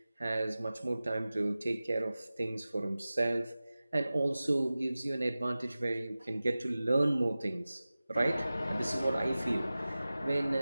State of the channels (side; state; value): both; inverted; correlation -0.96